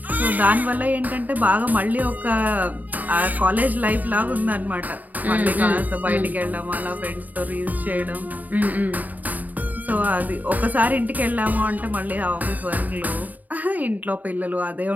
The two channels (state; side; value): late; left; 0.080 ms